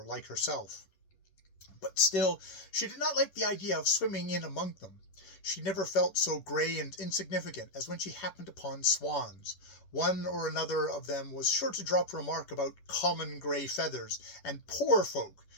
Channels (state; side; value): late; right; 11 ms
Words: like herself. But still, she did not like the idea of swimming in among them. She never felt so grey and insignificant as when she happened upon swans. One or another of them was sure to drop a remark about common grey feathers and poor folk,